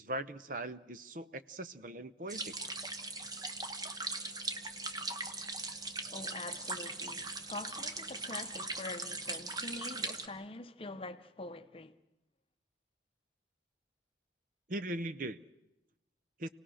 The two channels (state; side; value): normal; both; correlation 0.01